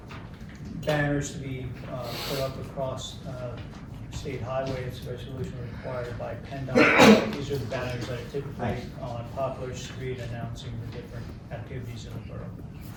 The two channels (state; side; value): identical; both; correlation 1.00